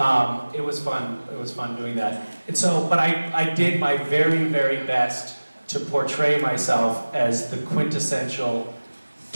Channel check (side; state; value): both; inverted; correlation -1.00